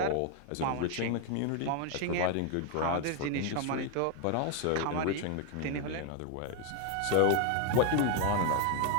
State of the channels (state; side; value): different; both; correlation 0.01